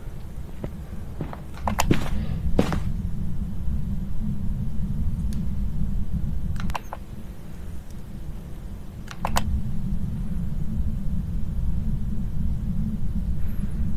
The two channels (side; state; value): both; identical; correlation 1.00